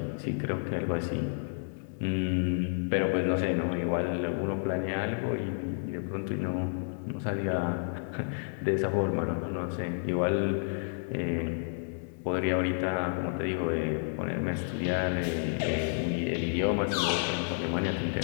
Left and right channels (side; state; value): right; silent; digital silence